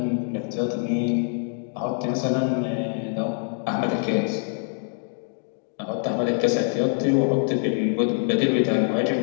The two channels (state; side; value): silent; right; 57 dB below the other